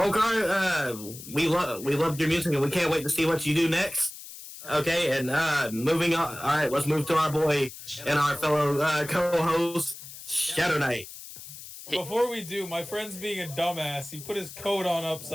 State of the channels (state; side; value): noise; left; hiss, 14 dB below the sound